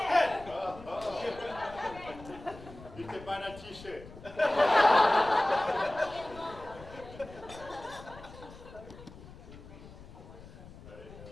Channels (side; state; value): left; noise; rumble, 17 dB below the sound